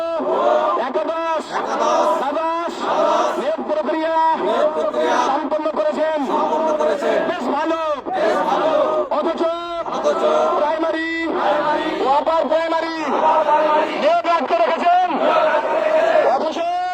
একাদশ দ্বাদশ নিয়োগ প্রক্রিয়া সম্পন্ন করেছেন। বেশ ভালো। অথচ প্রাইমারি ও আপার প্রাইমারি নিয়োগ রাখতে রেখেছেন। অথচ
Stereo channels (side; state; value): both; identical; correlation 1.00